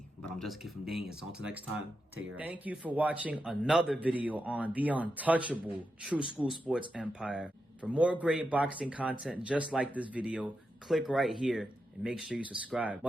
But I'm just a kid from Dane. So until next time, take care. Thank you for watching another video on the untouchable True School Sports Empire. For more great boxing content just like this video, click right here and make sure you subscribe.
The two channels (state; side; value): normal; both; correlation 0.87